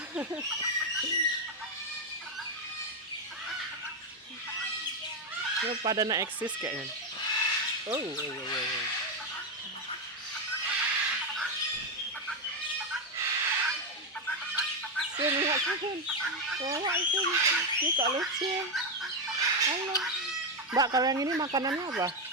Ini pada nak eksis kayaknya. Oh. Sini, lihat sini. Bawa sini. Ini kok lucu. Halo. Mbak, kalau yang ini makanannya apa?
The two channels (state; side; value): normal; both; correlation 0.07